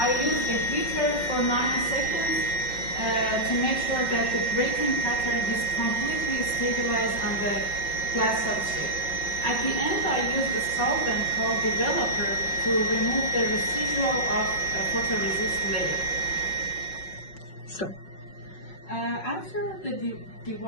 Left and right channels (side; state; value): right; late; 5.4 ms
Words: use the heater for 90 seconds to make sure that the grating pattern is completely stabilized on the glass substrate. At the end, I use a solvent called developer to remove the residual of a photoresist layer. Sure. After the